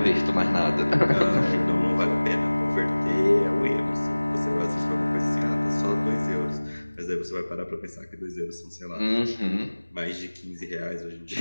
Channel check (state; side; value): inverted; both; correlation -1.00